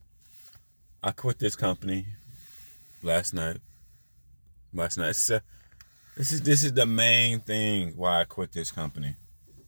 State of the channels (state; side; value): inverted; both; correlation -1.00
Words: I quit this company last night. This is the main thing why I quit this company.